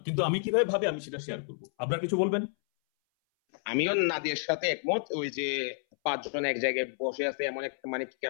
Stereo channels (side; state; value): right; silent; 58 dB below the other